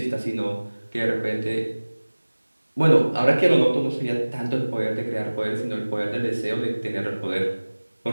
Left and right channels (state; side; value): inverted; both; correlation -1.00